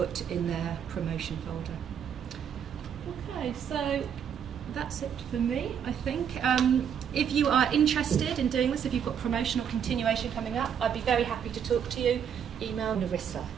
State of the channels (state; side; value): quieter; left; 8.2 dB